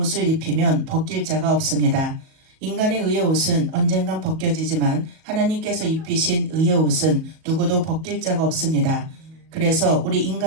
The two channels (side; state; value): left; late; 37 ms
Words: 입히면 벗길 자가 없습니다. 인간의 의의 옷은 언젠간 벗겨지지만 하나님께서 입히신 의의 옷은 누구도 벗길 자가 없습니다. 그래서 우리